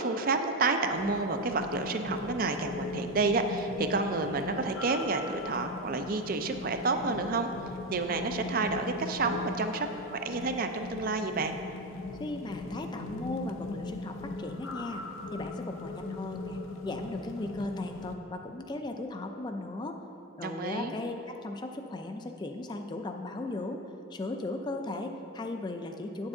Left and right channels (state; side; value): normal; both; correlation 0.15